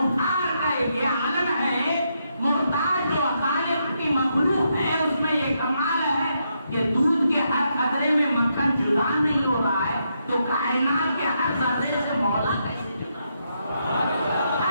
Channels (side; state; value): both; inverted; correlation -0.80